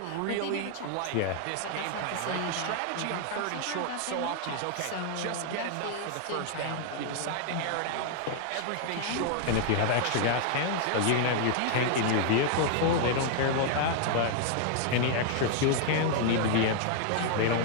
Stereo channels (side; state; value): both; different; correlation 0.00